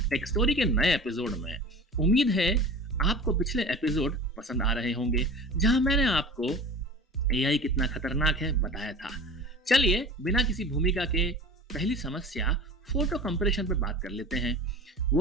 take story के नए एपिसोड में। उम्मीद है आपको पिछले एपिसोड पसंद आ रहे होंगे, जहां मैंने आपको एआई कितना खतरनाक है बताया था। चलिए बिना किसी भूमिका के पहली समस्या फोटो कंप्रेशन पे बात कर लेते हैं,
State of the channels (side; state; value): both; normal; correlation 0.38